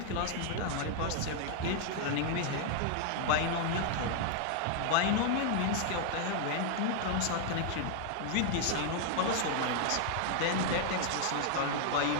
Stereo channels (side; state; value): both; different; correlation 0.00